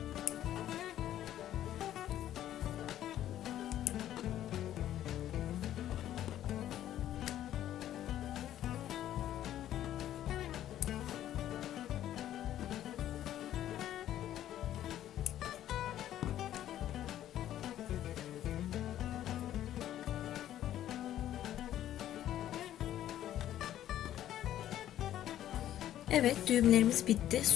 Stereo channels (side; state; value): right; quieter; 12.1 dB